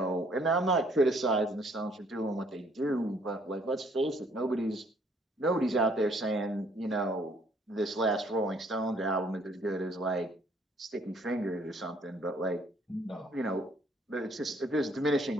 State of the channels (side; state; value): both; normal; correlation 0.63